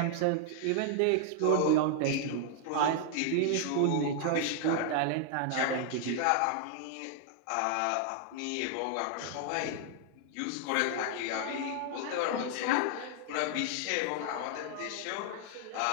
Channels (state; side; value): different; both; correlation 0.00